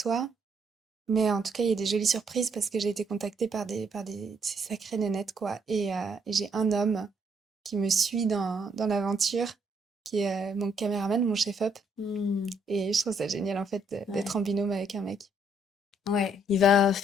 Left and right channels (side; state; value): both; normal; correlation 0.70